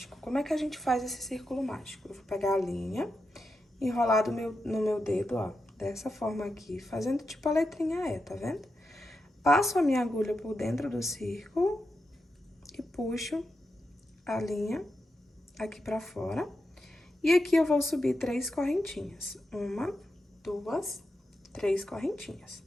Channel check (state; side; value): normal; both; correlation 0.88